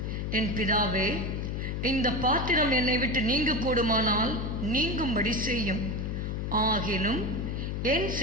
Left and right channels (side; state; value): left; noise; hum, 2 dB below the sound